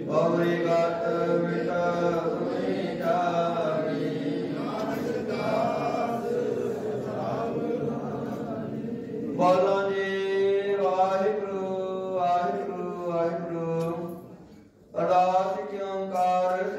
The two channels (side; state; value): both; identical; correlation 1.00